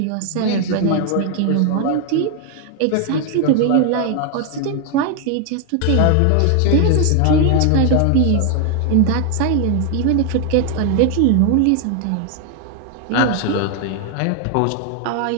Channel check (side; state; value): both; different; correlation 0.01